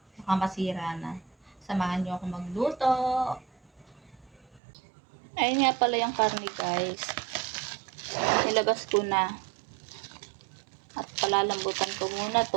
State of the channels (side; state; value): left; drops out; at 4.6 s